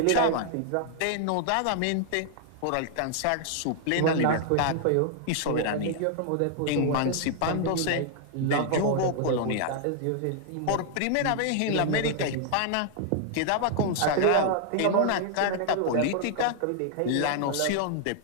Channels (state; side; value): different; both; correlation 0.00